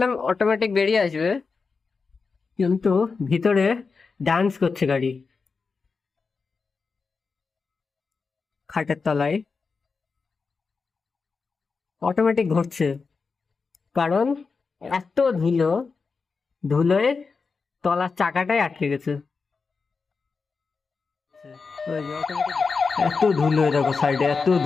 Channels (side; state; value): right; quieter; 4.7 dB